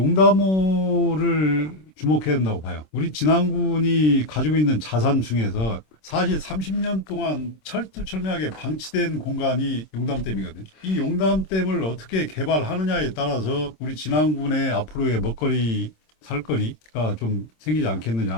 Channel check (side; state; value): right; late; 26 ms